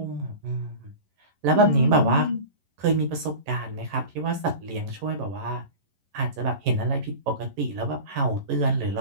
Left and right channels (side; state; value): left; late; 11 ms